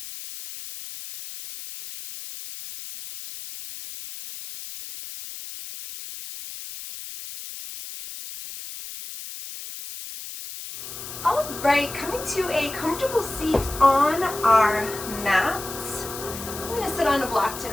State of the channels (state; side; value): noise; left; hiss, 11 dB below the sound